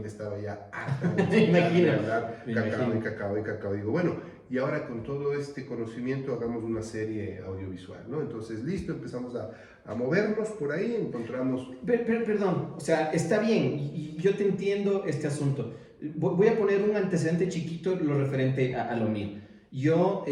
estaba ya harta de hablar cacao. Digo, bueno, y ahora con todo este conocimiento hagamos una serie audiovisual, ¿no? Entonces, listo, empezamos a movernos por ahí, encontramos... Perdón, o sea, está bien, y yo te entiendo este asunto. Voy a poner un antecedente chiquito, lo referente a lo mío. Yo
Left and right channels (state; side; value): identical; both; correlation 1.00